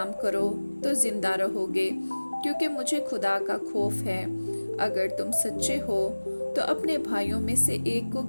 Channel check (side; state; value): both; inverted; correlation -1.00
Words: करो तो जिंदा रहोगे, क्योंकि मुझे खुदा का खौफ है। अगर तुम सच्चे हो तो अपने भाइयों में से एक को